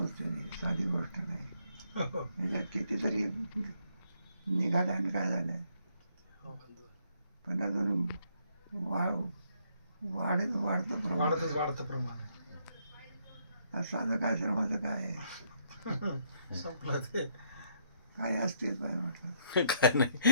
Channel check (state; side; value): inverted; both; correlation -0.71